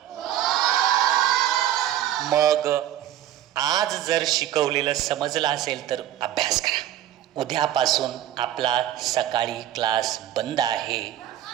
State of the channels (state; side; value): quieter; left; 12.0 dB